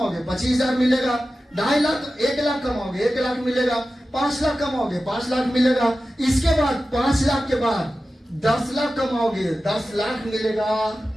25000 मिलेगा, 2.5 लाख 1 लाख कमाओगे 1 लाख मिलेगा, 5 लाख कमाओगे 5 लाख मिलेगा। इसके बाद 5 लाख के बाद 10 लाख कमाओगे 10 लाख मिलेगा,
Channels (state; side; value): normal; both; correlation 0.94